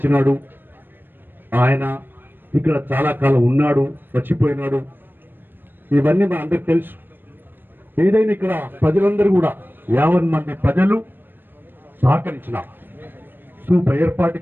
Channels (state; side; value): late; left; 0.095 ms